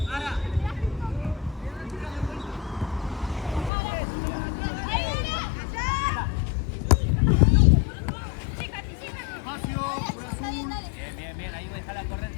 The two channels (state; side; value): drops out; right; at 3.7 s